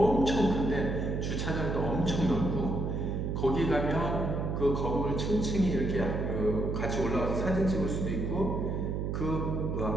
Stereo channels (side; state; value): right; noise; hum, 1 dB below the sound